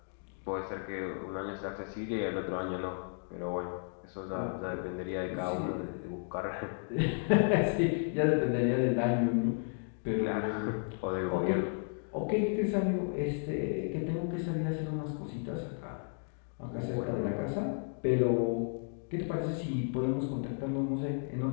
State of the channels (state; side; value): silent; right; 55 dB below the other